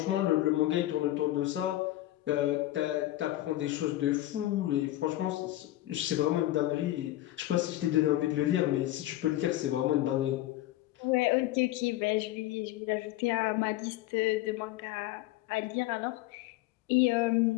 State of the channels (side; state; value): right; quieter; 15.5 dB